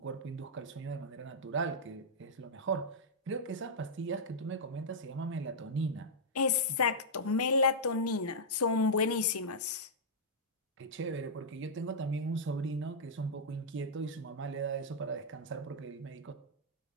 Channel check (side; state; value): both; normal; correlation -0.09